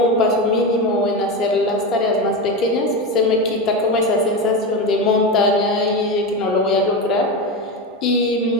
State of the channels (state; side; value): normal; both; correlation 0.18